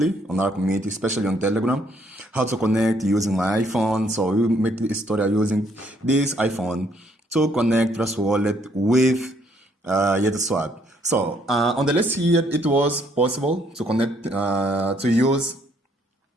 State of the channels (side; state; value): both; normal; correlation 0.67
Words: on our community, especially on Telegram, how to connect using my iPhone. So we make this tutorial using this iPhone to connect Trust Wallet with YetuSwap. So on the list here, it was possible to connect, to use